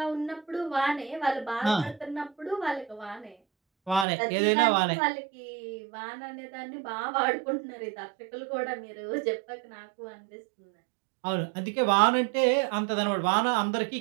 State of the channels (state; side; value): drops out; left; at 4.0 s